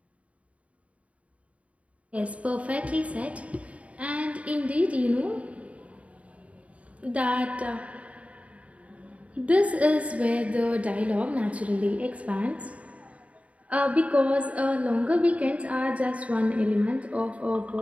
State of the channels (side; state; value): left; late; 0.066 ms